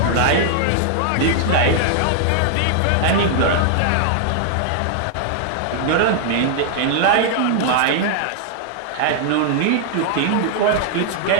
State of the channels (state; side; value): different; both; correlation -0.01